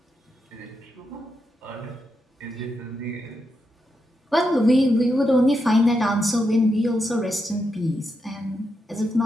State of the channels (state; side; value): normal; both; correlation 0.84